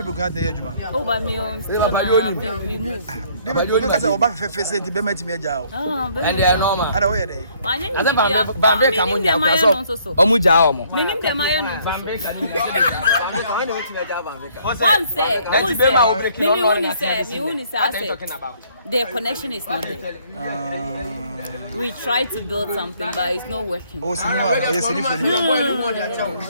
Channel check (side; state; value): both; inverted; correlation -0.63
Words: be glad to hear you. Oh, by me, remove. Because I back for face to be met me a job. And they are normal. I don't wear Bambe Kamunya, Omuja, meaning the Mayan. One say, their connection is not there. We try to build something, but it's not working. Oh,